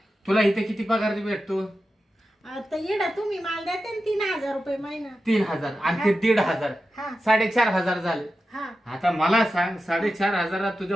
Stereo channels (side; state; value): both; normal; correlation 0.91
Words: तुला इथे किती पगार भेटतो? आता येडा तुम्ही माल देते ना 3,000 रुपये महिना. 3,000 आणि ते 1,500, हा 4,500 झाले. हा आता मला सांग, 4,500